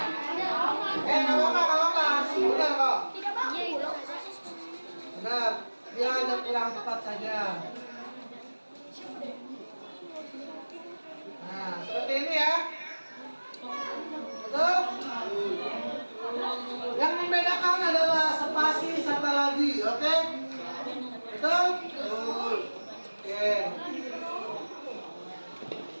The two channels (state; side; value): inverted; both; correlation -1.00